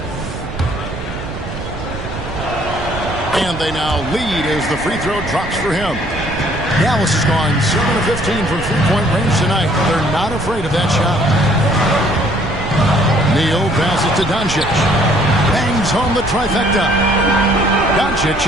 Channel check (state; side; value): noise; right; rumble, 9 dB below the sound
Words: And they now lead as the free throw drops for him. Dallas has gone 7 of 15 from three-point range tonight. They're not afraid of that shot. Neal passes to Doncic. Bangs home the trifecta. Doncic